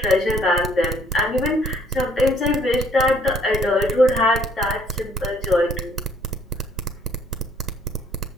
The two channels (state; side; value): normal; both; correlation 0.62